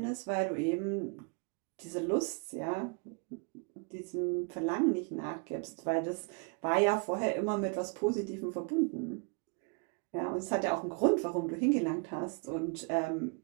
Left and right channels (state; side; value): quieter; left; 33.8 dB